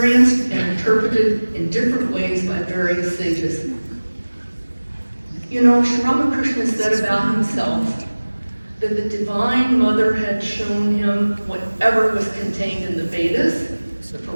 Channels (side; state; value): both; inverted; correlation -1.00